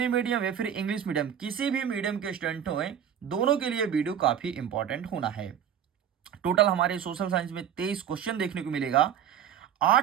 मीडियम या फिर इंग्लिश मीडियम किसी भी मीडियम के स्टूडेंट हो, दोनों के लिए वीडियो काफी इंपॉर्टेंट होना है। टोटल हमारे सोशल साइंस में 23 क्वेश्चन देखने को मिलेगा।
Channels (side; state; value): left; quieter; 9.0 dB